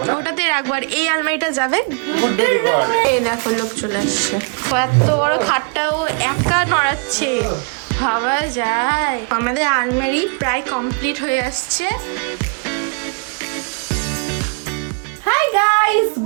না, ওটাতে রাখবো। আর এই আলমারিটা যাবে, এই দেখো লোক চলে আসছে। এত বড় খাটটাও একা নড়াচ্ছে, ভাবা যায়। আমাদের আলমারি প্রায় কমপ্লিট হয়ে আসছে। Hi guys,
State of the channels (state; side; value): quieter; left; 37.2 dB